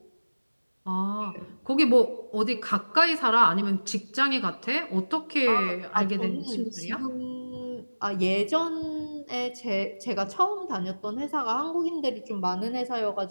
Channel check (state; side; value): inverted; both; correlation -1.00